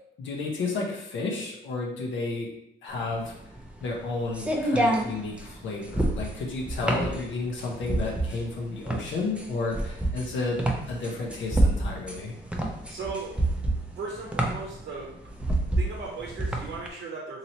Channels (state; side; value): normal; both; correlation 0.69